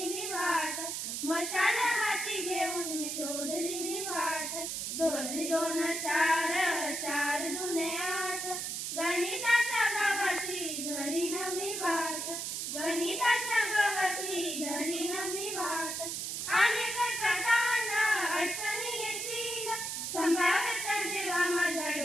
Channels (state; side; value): noise; right; hiss, 3 dB below the sound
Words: मी वाट, मशाल हाती घेऊन मी शोधली मी वाट. दोन दोन चार, चार दुने आठ, गणिताच्या गावाची धरीन मी वाट, गणिताच्या गावाची धरीन मी वाट. अनेक करताना अडचणी येतील, संभाव्यता जेव्हा माझ्या